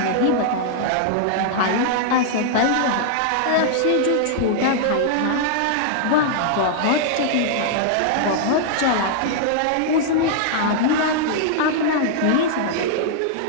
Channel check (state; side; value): different; both; correlation -0.01